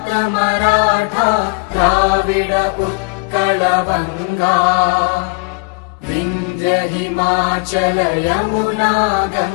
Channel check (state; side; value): quieter; right; 30.1 dB